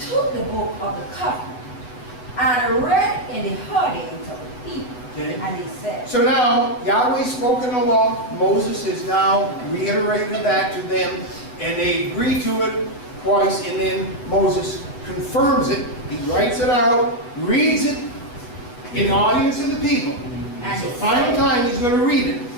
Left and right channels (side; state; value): right; late; 8.2 ms